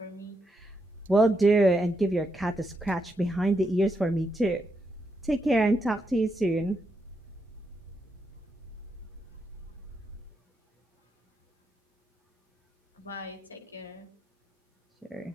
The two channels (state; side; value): normal; both; correlation 0.82